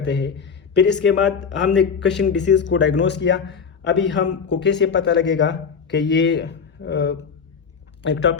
हैं। फिर इसके बाद हमने कशिंग डिसीज़ को डायग्नोस किया। अभी हमको कैसे पता लगेगा कि ये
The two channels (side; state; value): right; quieter; 6.1 dB